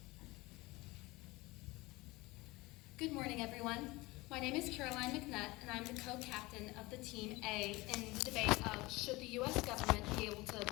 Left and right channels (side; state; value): right; quieter; 21.8 dB